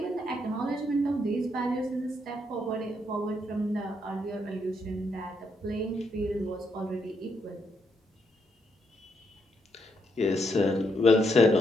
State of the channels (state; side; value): normal; both; correlation 0.77